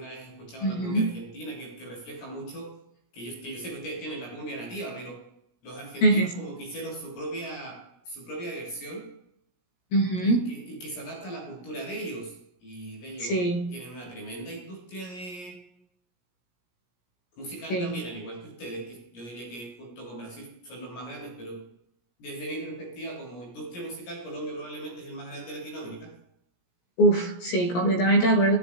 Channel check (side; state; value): right; late; 17 ms